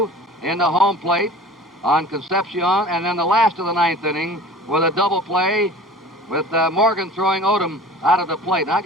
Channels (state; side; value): normal; both; correlation 0.42